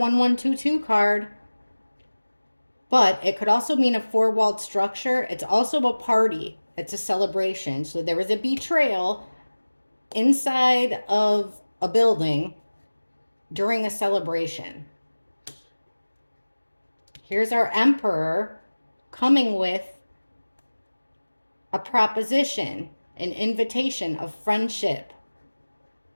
card. But it could also mean a 4-walled structure. It's also a party. It's a celebration. So there was a betrayal inside of a building during a celebration. Here's our Emperor coming with a proposition, an invitation of friendship,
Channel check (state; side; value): inverted; both; correlation -1.00